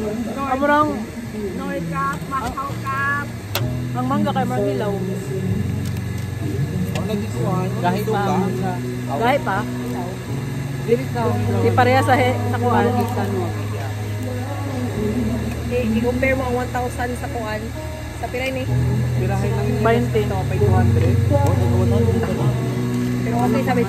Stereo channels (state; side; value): identical; both; correlation 1.00